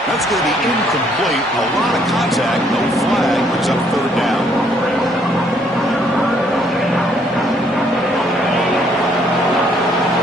That's going to be incomplete. A lot of contact. No flag. Brings up third down.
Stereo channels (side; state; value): both; normal; correlation 0.67